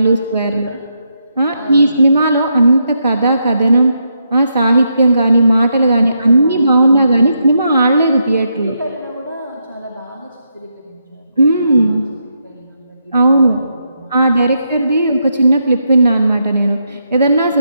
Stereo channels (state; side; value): inverted; both; correlation -0.81